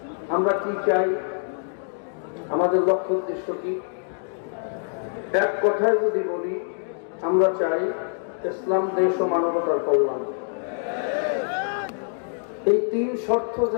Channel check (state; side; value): silent; right; digital silence